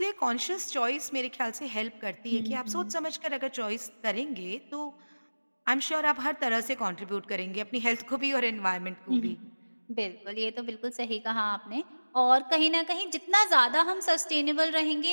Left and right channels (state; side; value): inverted; both; correlation -1.00